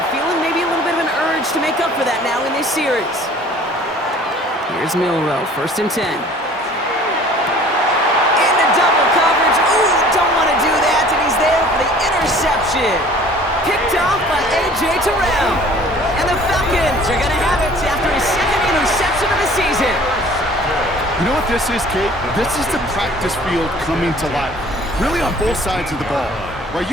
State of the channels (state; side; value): normal; both; correlation 0.50